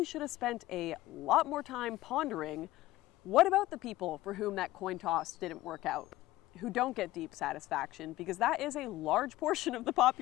should have spent a lot more time pondering, what about the people for whom that coin toss didn't work out, who don't get deep satisfaction, because that is a large portion of the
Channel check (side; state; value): right; quieter; 16.7 dB